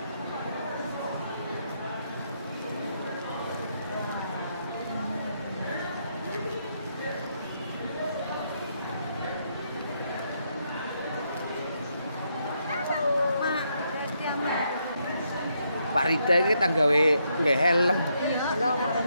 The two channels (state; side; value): inverted; both; correlation -0.77